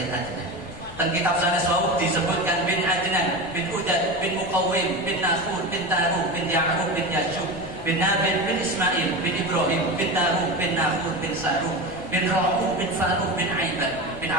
Adnan. Dan kitab sanes wau disebutkan bin Adnan, bin Udad, bin Muqawwim, bin Nakhur, bin Taruh, bin Ya'qub, bin Yashub, bin Nabil, bin Ismail, bin Ibrahim, bin Taruh, bin Nakhur, bin Saruh, bin Ra'u, bin Faruq, bin Aibad, bin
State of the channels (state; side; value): noise; left; rumble, 17 dB below the sound